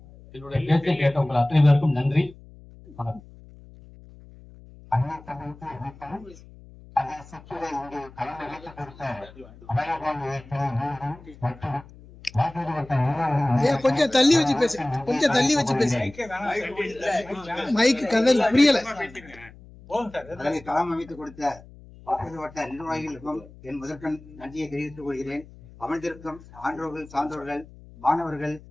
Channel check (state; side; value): noise; left; hum, 21 dB below the sound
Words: என்னுடைய பேச்சை கேட்ட உங்கள் அத்தனை பேருக்கும் நன்றி. வணக்கம். கொஞ்சம் தள்ளி வச்சு பேசு, கொஞ்சம் தள்ளி வச்சு பேசு. மைக்கு கதல் புரியல. களம் அமைத்துக் கொடுத்த வாக்குறுதி வட்ட நிர்வாகிகளுக்கும் என் முதற்கண் நன்றியை தெரிவித்துக் கொள்கிறேன். அமர்ந்திருக்கும் ஆன்றோர்கள், சான்றோர்கள், மாணவர்கள்